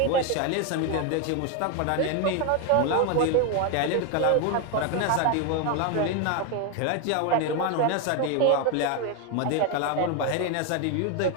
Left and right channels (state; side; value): different; both; correlation 0.01